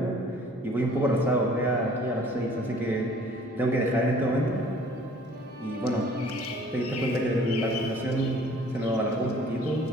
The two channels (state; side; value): normal; both; correlation 0.53